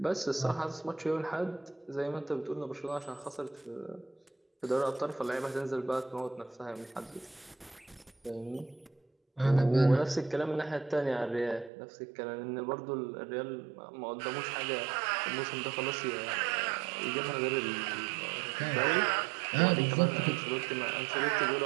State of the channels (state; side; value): drops out; left; at 11.7 s